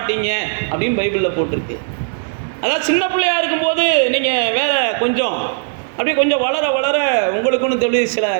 அப்படின்னு பைபிளில் போட்டிருக்கு. அதாவது சின்ன பிள்ளையாக இருக்கும்போது நீங்கள் வேறு கொஞ்சம் அப்படியே கொஞ்சம் வளர வளர உங்களுக்குன்னு தெரிஞ்சு சில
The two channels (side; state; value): left; silent; digital silence